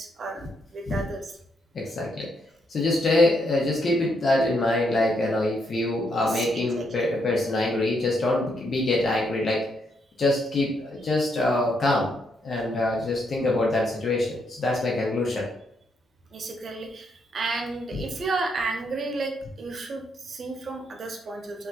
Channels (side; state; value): both; normal; correlation 0.77